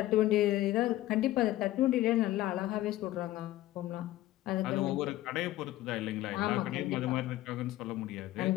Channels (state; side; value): quieter; right; 15.4 dB